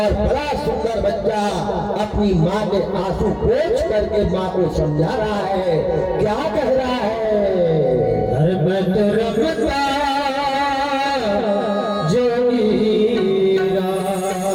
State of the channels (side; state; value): both; identical; correlation 1.00